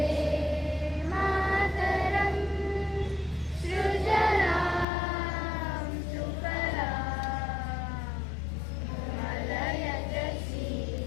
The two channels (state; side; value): drops out; right; at 4.9 s